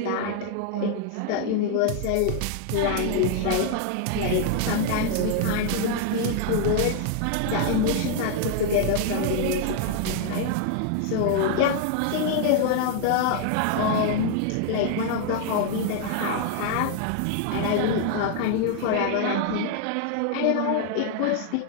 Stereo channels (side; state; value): both; different; correlation 0.00